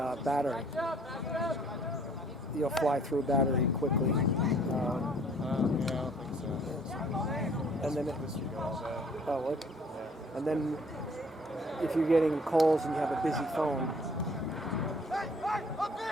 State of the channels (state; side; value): normal; both; correlation 0.57